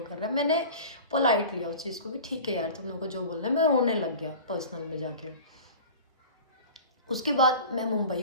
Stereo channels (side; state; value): both; inverted; correlation -0.37